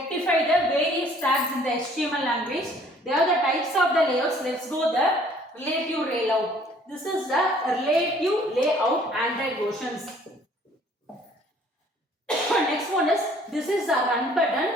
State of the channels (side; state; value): both; normal; correlation 0.57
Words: the various tags in the HTML language. They are the types of the layouts. Let's go the relative layout. This is the relative layout Android versions. next one is, this is the run